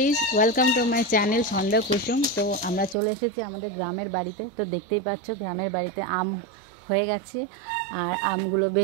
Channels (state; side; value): drops out; left; at 3.0 s